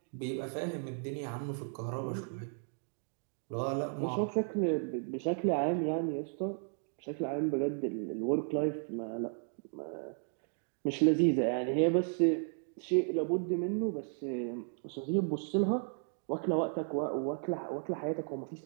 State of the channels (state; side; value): silent; left; 55 dB below the other